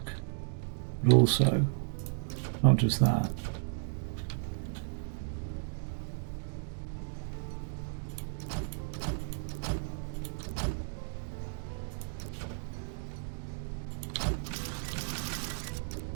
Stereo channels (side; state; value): left; silent; digital silence